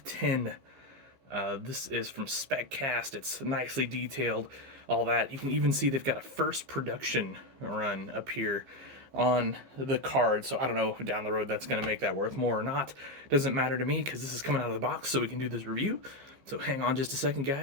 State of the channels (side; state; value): left; late; 15 ms